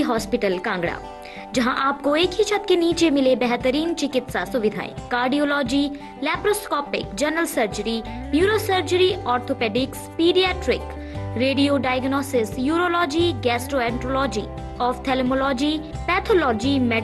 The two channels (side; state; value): both; identical; correlation 1.00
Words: hospital Kangra, जहां आपको एक ही छत के नीचे मिले बेहतरीन चिकित्सा सुविधाएं, cardiology, laparoscopic, general surgery, neuro surgery, orthopaedics, paediatric, radio diagnosis, urology, gastroenterology, ophthalmology, pathology,